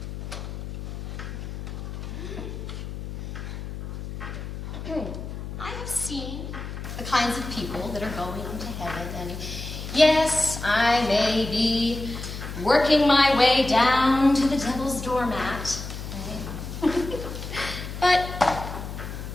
I have seen the kinds of people that are going into heaven, and yes, I may be working my way down to the devil's doormat, right? But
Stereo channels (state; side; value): noise; left; hum, 8 dB below the sound